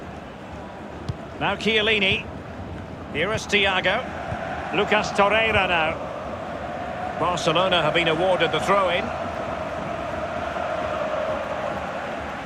Now Chiellini. Here is Thiago. Lucas Torreira now. Barcelona have been awarded the throw-in.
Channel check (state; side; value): identical; both; correlation 1.00